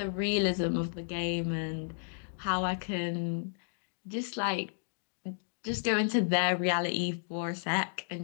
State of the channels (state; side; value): silent; right; digital silence